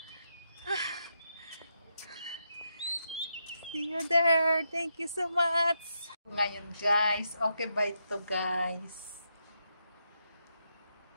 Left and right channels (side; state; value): both; inverted; correlation -0.82